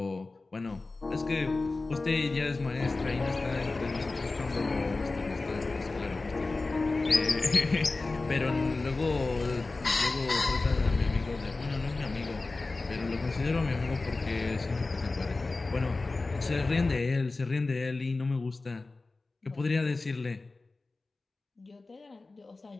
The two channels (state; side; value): quieter; right; 3.5 dB